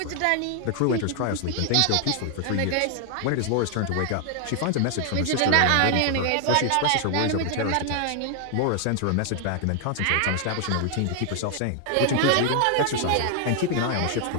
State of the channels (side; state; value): both; different; correlation 0.00